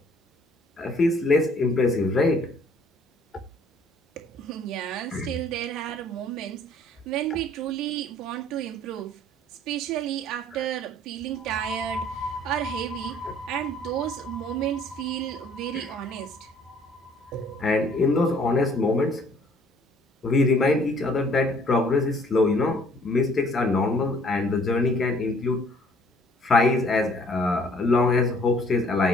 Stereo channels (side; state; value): both; normal; correlation 0.58